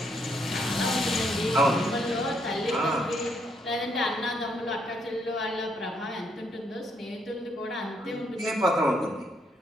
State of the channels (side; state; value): both; normal; correlation 0.73